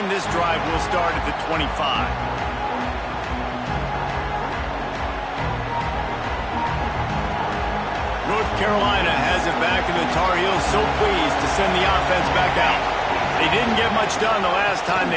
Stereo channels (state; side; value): identical; both; correlation 1.00